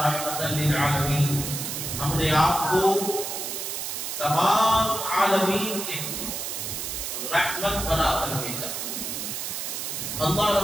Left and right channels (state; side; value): noise; right; hiss, 4 dB below the sound